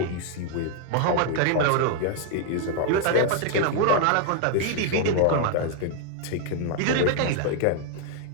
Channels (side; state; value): both; different; correlation 0.00